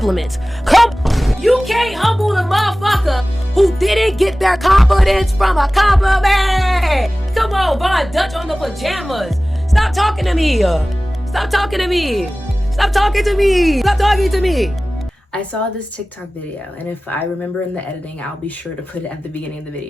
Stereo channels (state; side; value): normal; both; correlation 0.97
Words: You can't humble the motherfucker who didn't get their confidence from a compliment. Come on, Von Dutch on the pajamas. Stop talking to me. Stop talking to me. Stop talking to me. Stop talking to me. I saw this TikTok video, and if I remember in the editing, I'll be sure to put it at the beginning of the